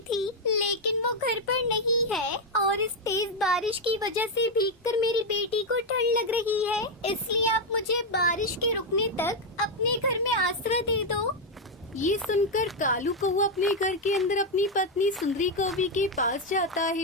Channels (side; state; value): both; normal; correlation 0.03